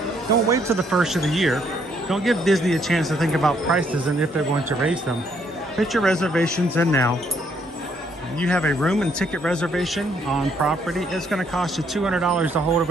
Don't wait till the first of the year. Don't give Disney a chance to think about prices and if they're going to raise them. Put your reservations in now. You have a room and ticket reservation on property, it's going to cost you $200 to hold a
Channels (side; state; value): both; normal; correlation 0.69